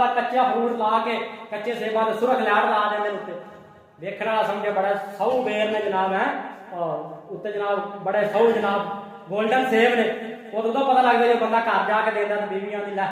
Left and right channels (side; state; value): both; identical; correlation 1.00